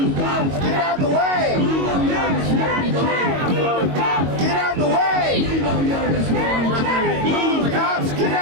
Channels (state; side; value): late; left; 22 ms